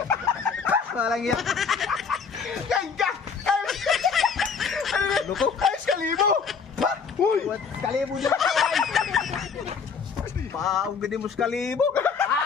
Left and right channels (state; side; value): quieter; right; 5.8 dB